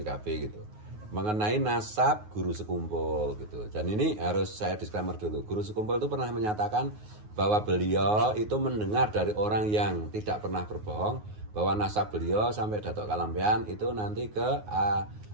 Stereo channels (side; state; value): left; late; 9.5 ms